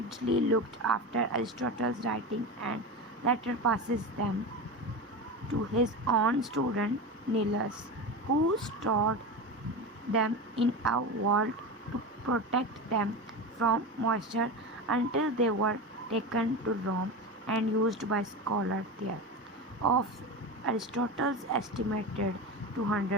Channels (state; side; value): normal; both; correlation 0.23